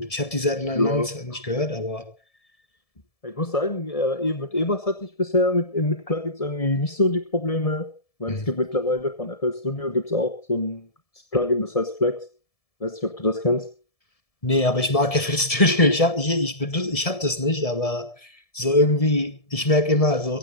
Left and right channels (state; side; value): late; right; 1.7 ms